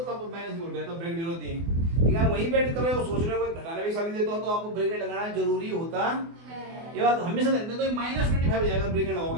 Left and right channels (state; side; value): late; left; 24 ms